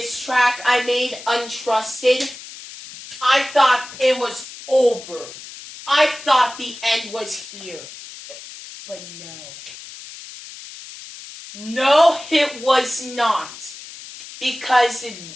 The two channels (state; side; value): noise; left; hiss, 15 dB below the sound